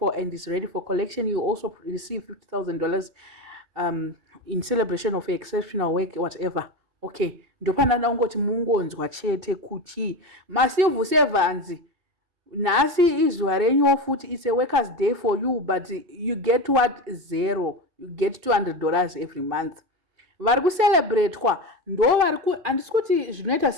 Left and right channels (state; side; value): late; left; 2.6 ms